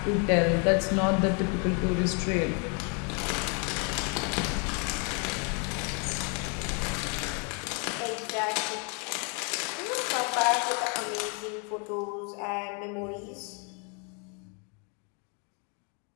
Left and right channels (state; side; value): quieter; right; 36.8 dB